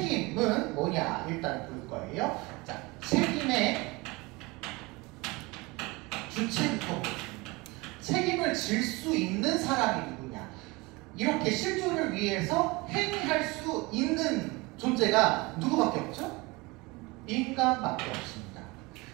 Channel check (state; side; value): quieter; left; 24.2 dB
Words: 뭐냐 일단 볼 거예요. 자, 책임의 주체부터 보겠습니다. 책임을 질 수 있는 사람이 누구냐? 이렇게 실존을 위해서 행위할 수 있는 존재가 누구밖에 없죠? 인간밖에 없습니다.